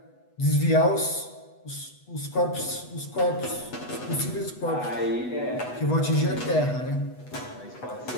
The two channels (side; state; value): right; late; 8.1 ms